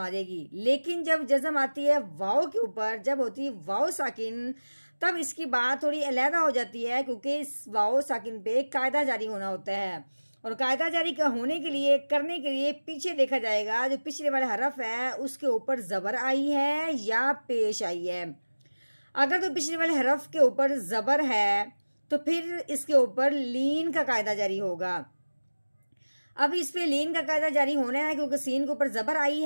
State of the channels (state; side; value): inverted; both; correlation -1.00